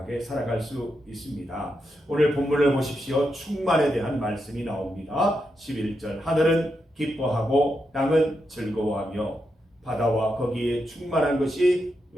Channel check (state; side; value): normal; both; correlation 0.85